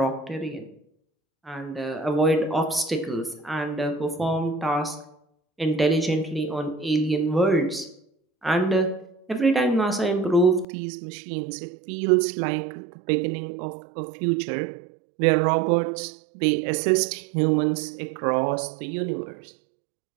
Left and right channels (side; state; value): left; drops out; at 10.7 s